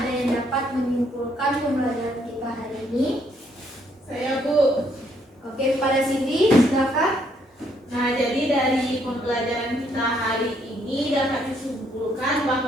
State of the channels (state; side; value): normal; both; correlation 0.70